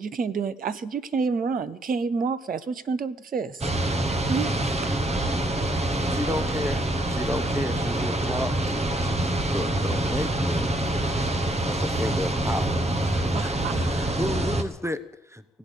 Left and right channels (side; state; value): both; normal; correlation 0.71